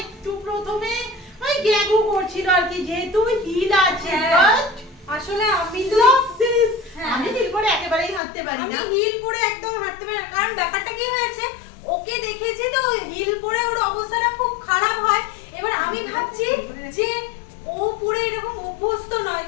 একটু প্রথমে ওই গ্যাগু করছিল আর কি, যেহেতু হিল আছে। হ্যাঁ। আসলে আমি তো আমি হিল করে একেবারেই হাঁটতে পারি না। আমি হিল পরে একদম হাঁটতে পারি না, কারণ ব্যাপারটা কি হয়েছে, ওকে দেখেছি তো হিল পরে ওর অবস্থাটা খুব খারাপ হয়। এবার আমি ভাবছি যে ও পরে এরকম অভ্যস্ত নয়,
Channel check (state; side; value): drops out; right; at 8.2 s